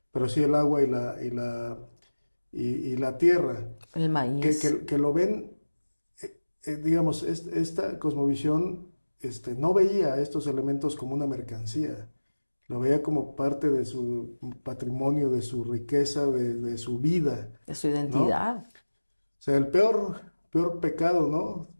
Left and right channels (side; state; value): both; inverted; correlation -1.00